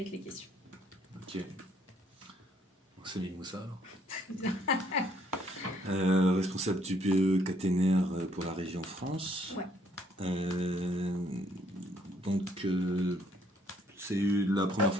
les questions. Ok. C'est Mimoussa alors. Responsable du BE caténaire pour la région France. Ouais. Donc, c'est la première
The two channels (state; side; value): normal; both; correlation 0.66